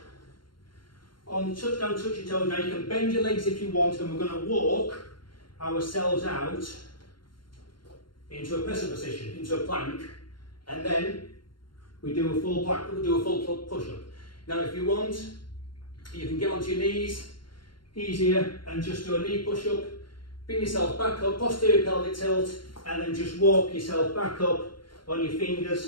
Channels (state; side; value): late; right; 0.72 ms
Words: on touch down, touch your toes. Now you can bend your legs if you want, and we're going to walk ourselves out into a presser position, into a plank, and then we do a full push-up. Now if you want, you can get onto your knees, easier, and just do a knee push-up, bring yourself back up, posterior pelvic tilt, and then just walk yourself back up on your